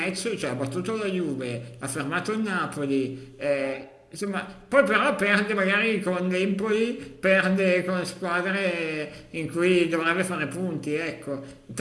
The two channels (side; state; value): both; identical; correlation 1.00